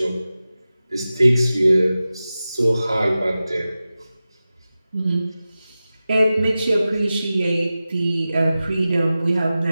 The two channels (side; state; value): both; inverted; correlation -0.95